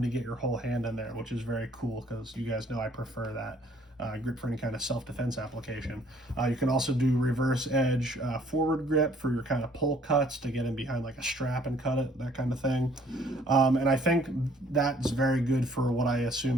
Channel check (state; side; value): normal; both; correlation 0.60